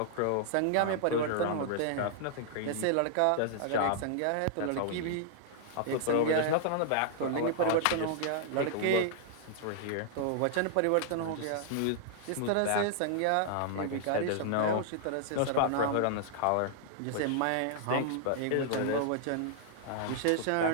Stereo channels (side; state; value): both; different; correlation -0.01